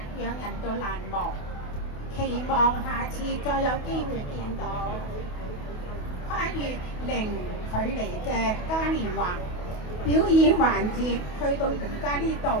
讓人到難忘，期望下次再有機會見到跨越零距離嘅嘉年華表演環節，去到而家呢度，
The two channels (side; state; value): right; late; 28 ms